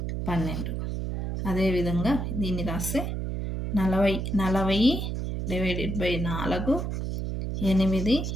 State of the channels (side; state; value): right; noise; hum, 3 dB below the sound